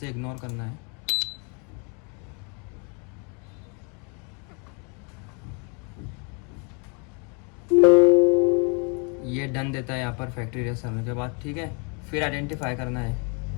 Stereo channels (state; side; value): quieter; right; 35.2 dB